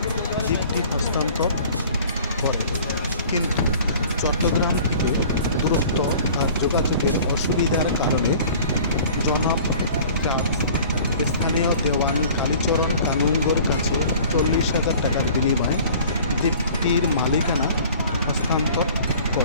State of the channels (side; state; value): both; inverted; correlation -0.47